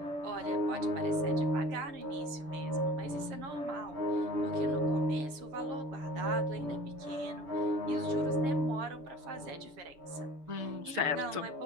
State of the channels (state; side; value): late; left; 6.9 ms